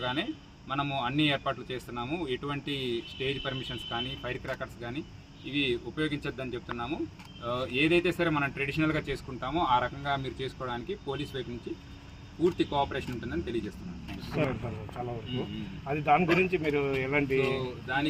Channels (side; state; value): both; identical; correlation 1.00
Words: మనము అన్ని ఏర్పాట్లు చేస్తున్నాము. ఎటువంటి స్టేజ్ పర్మిషన్స్ కానీ, ఫైర్ క్రాకర్స్ కానీ ఇవి ఉపయోగించొద్దని చెప్తున్నాము. ఏదైతే సరే మనం ట్రెడిషనల్గా చేసుకుంటామో ఆ రకంగా మీరు చేసుకోవడానికి పోలీస్ వైపు నుంచి పూర్తి కోఆపరేషన్ ఉంటుందని తెలియజేస్తున్నాను. అది దాని గురించి మీరు ఎలాంటి